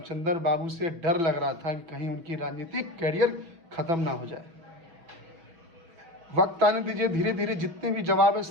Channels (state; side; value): late; left; 6.1 ms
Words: बाबू से डर लग रहा था कि कहीं उनकी राजनीतिक कैरियर ख़त्म ना हो जाए। वक्त आने दीजिए, धीरे धीरे जितने भी जवाब है